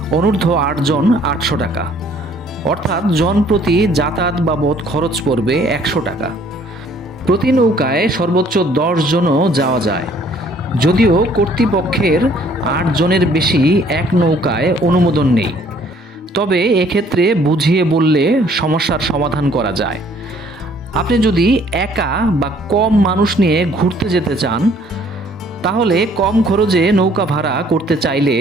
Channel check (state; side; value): normal; both; correlation 0.60